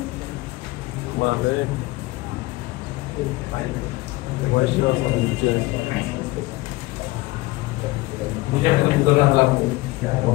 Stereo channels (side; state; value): right; quieter; 20.7 dB